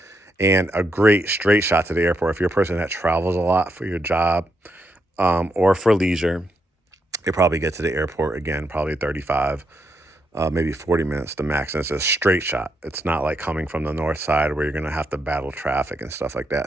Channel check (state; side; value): normal; both; correlation 0.80